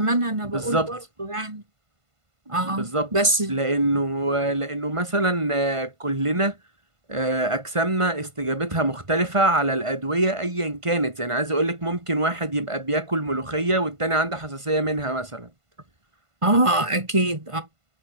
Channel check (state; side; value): late; left; 1.5 ms